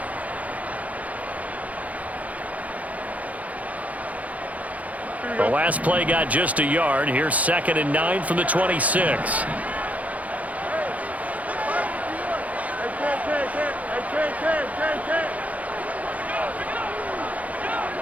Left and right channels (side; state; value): left; late; 0.071 ms